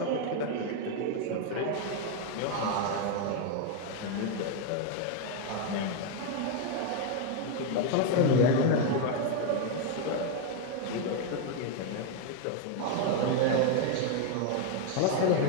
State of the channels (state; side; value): different; both; correlation 0.01